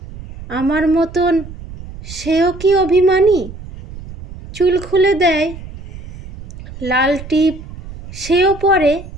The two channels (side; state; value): right; noise; rumble, 14 dB below the sound